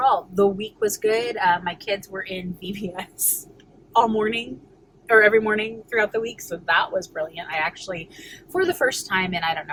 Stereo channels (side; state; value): both; identical; correlation 1.00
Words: the week was good. My kids were in VBS all morning, or every morning throughout the week. So that was brilliant. I actually, for the first time in I don't